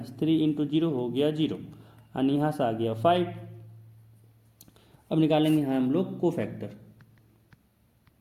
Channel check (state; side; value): identical; both; correlation 1.00